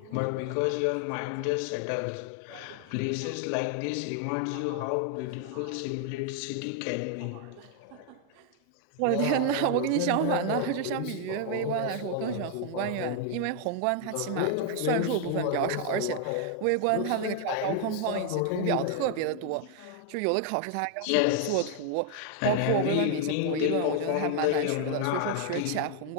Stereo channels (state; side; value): different; both; correlation 0.00